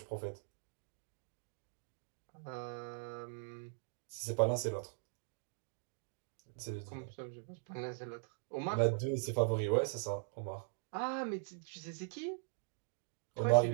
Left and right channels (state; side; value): silent; left; digital silence